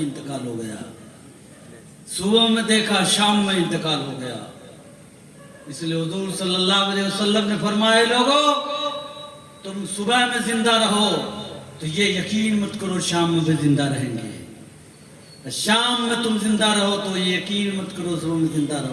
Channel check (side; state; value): both; identical; correlation 1.00